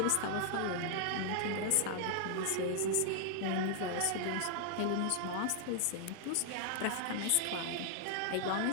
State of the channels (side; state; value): both; different; correlation 0.00